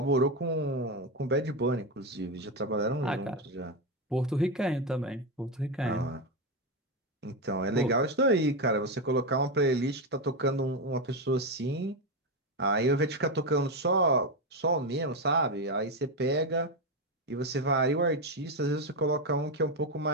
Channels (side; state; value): both; normal; correlation 0.10